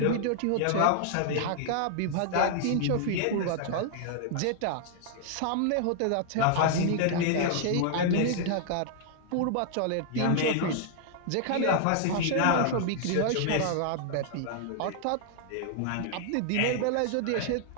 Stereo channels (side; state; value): both; different; correlation 0.00